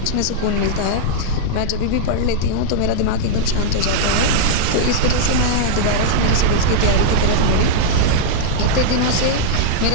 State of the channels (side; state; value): both; different; correlation -0.01